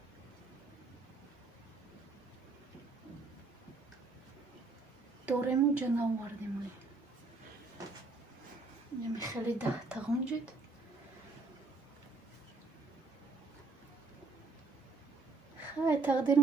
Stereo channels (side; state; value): left; quieter; 3.7 dB